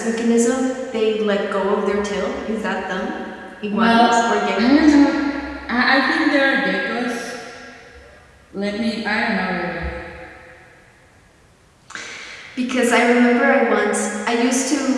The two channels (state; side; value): identical; both; correlation 1.00